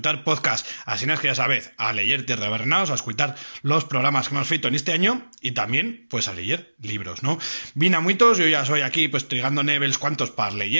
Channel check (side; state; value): both; inverted; correlation -1.00